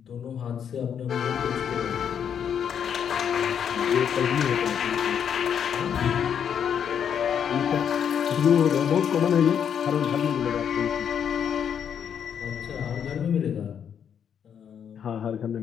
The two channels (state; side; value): quieter; right; 8.2 dB